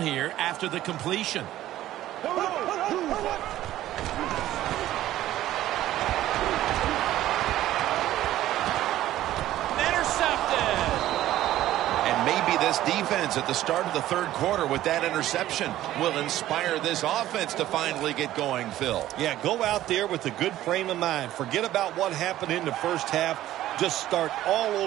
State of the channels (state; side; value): quieter; left; 13.9 dB